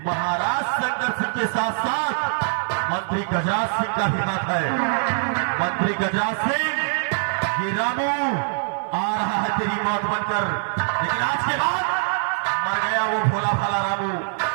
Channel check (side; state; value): left; silent; digital silence